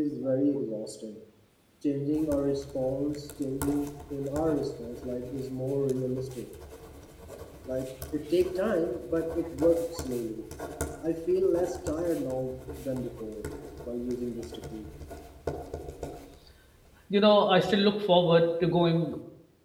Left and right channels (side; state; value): both; identical; correlation 1.00